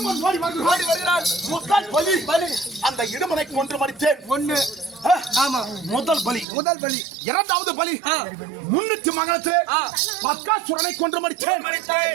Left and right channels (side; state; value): left; drops out; at 6.5 s